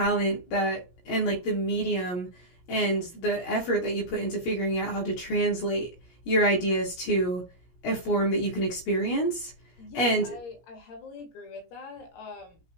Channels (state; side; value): late; right; 17 ms